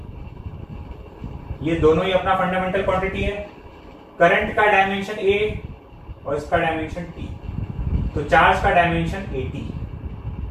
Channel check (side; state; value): both; identical; correlation 1.00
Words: ये दोनों ही अपना फंडामेंटल क्वांटिटी है। करंट का डायमेंशन A और इसका डायमेंशन T, तो चार्ज का डायमेंशन AT।